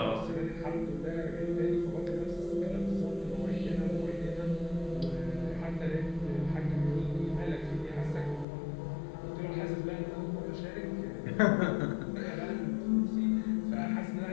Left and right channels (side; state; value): right; drops out; at 8.5 s